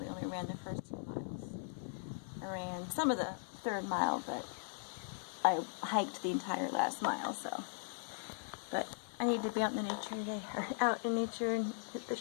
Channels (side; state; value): right; silent; 52 dB below the other